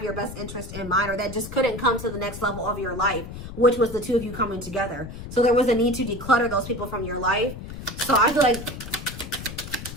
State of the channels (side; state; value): left; noise; rumble, 10 dB below the sound